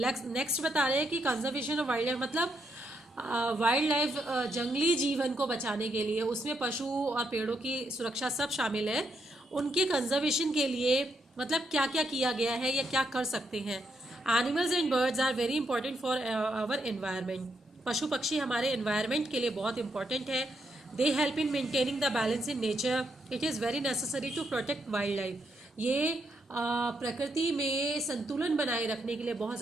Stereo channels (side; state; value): both; normal; correlation 0.78